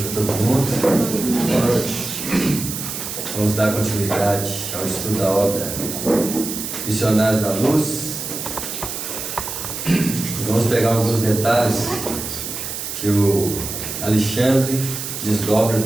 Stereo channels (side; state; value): right; noise; hiss, 6 dB below the sound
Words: para todo mundo. Boa noite. Vamos dar continuidade ao estudo da obra Missionários da Luz. Vamos pegar alguns detalhes que o Alexandre desdobra